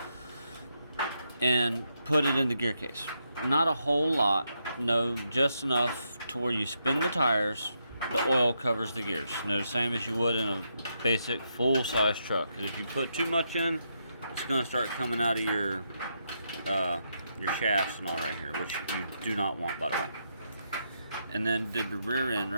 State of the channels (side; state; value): both; inverted; correlation -0.81